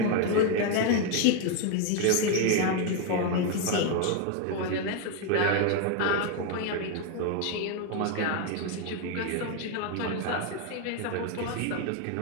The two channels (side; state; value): both; different; correlation 0.01